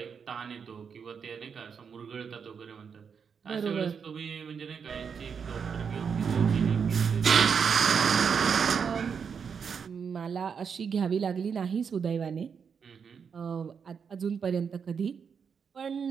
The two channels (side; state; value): left; quieter; 6.5 dB